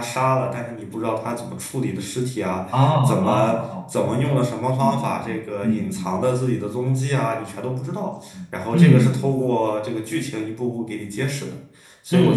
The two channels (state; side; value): identical; both; correlation 1.00